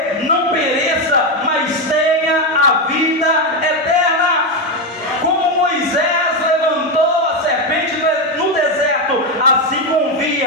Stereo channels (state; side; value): normal; both; correlation 0.09